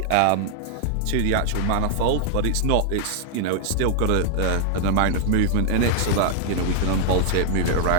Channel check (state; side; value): different; both; correlation 0.00